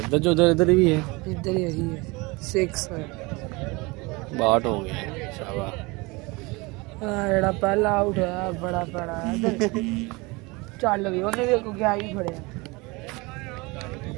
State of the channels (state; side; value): quieter; left; 25.1 dB